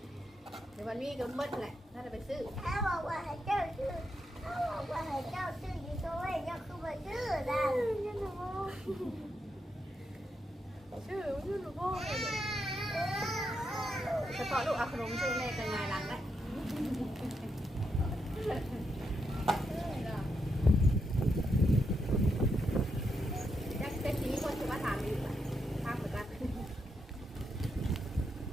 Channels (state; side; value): normal; both; correlation 0.82